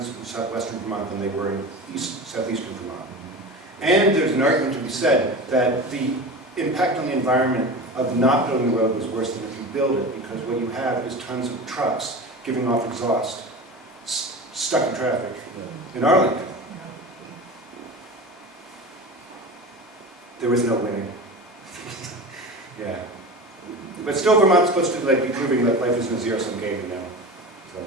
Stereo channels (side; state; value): both; normal; correlation 0.31